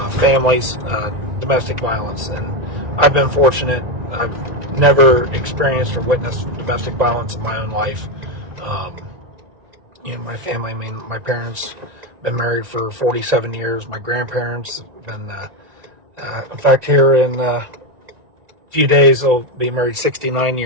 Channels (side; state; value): left; late; 1.9 ms